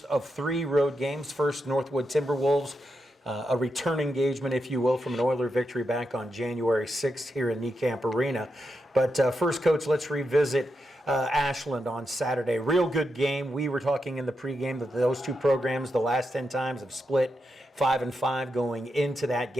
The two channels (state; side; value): normal; both; correlation 0.86